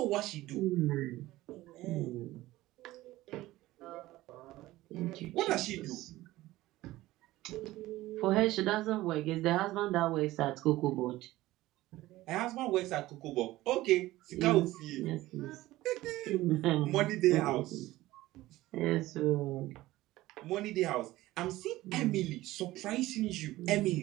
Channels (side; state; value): left; quieter; 17.1 dB